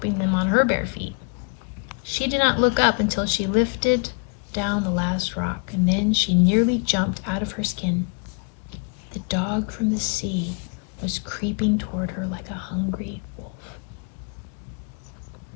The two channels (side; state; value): right; quieter; 36.9 dB